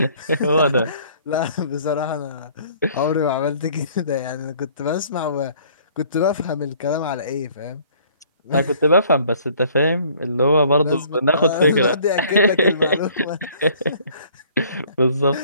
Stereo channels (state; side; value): inverted; both; correlation -0.57